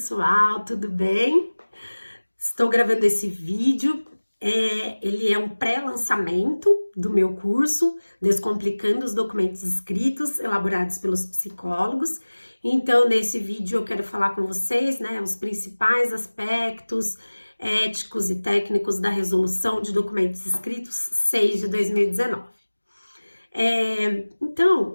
tudo bem? Estou gravando esse vídeo. Ele é um pré-lançamento do meu curso Descomplicando os Documentos Escritos, elaborados pelos psicólogos. Então, nesse vídeo eu quero falar com vocês, né, os principais aspectos éticos e técnicos da Resolução de Documentos Escritos 6 de 2019. Então,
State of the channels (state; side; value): inverted; both; correlation -1.00